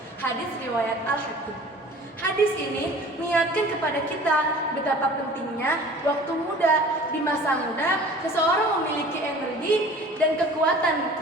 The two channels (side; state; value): both; normal; correlation 0.45